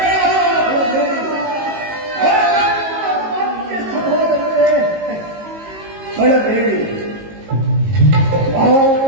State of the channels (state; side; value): late; left; 19 ms